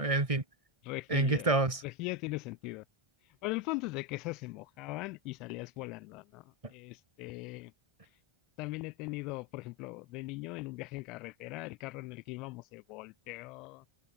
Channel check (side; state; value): left; late; 1.6 ms